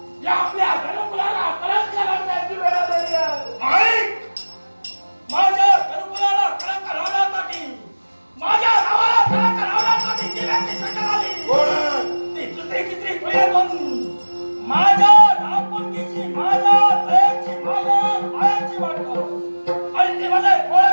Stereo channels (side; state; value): both; inverted; correlation -1.00